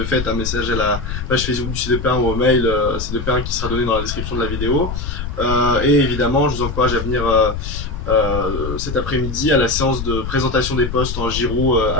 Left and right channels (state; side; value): noise; left; rumble, 5 dB below the sound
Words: fait un message à la page Facebook du C2P1 ou au mail C2P1 qui sera donné dans la description de la vidéo. Et évidemment, je vous encourage à venir cet après-midi à la séance de présentation des postes en Giroud